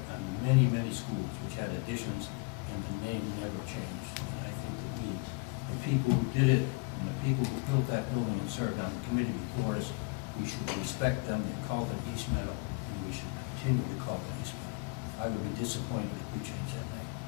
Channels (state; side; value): quieter; right; 29.8 dB